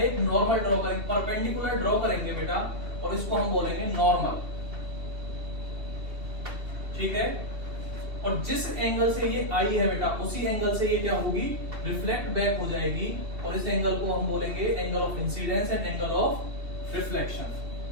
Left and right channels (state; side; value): late; left; 2.8 ms